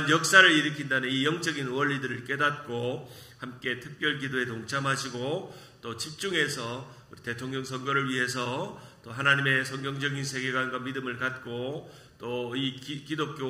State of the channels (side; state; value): both; identical; correlation 1.00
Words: 역사를 일으킨다는 이 영적인 원리들을 깨닫고 함께 특별 기도에 동참하시고 또 집중해서 우리 대통령 선거를 위해서 또 하나님의 성경적인 세계관과 믿음을 갖고 또 이